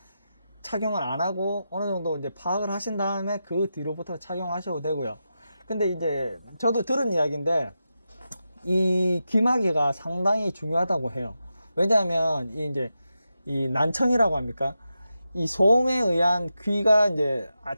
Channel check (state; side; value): inverted; both; correlation -0.89